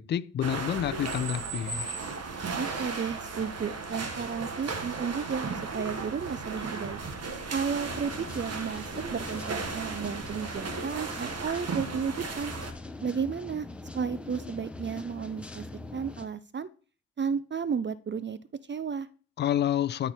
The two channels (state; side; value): normal; both; correlation 0.29